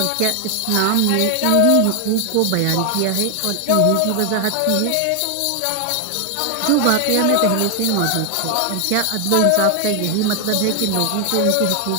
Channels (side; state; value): both; different; correlation 0.00